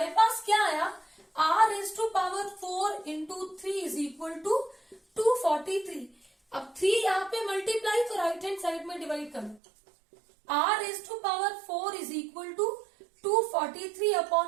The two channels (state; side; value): drops out; left; at 9.6 s